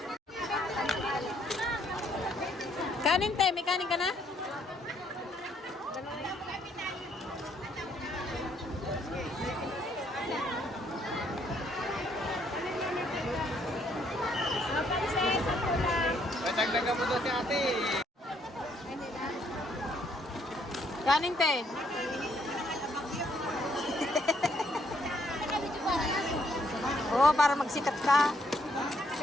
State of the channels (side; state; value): both; normal; correlation 0.69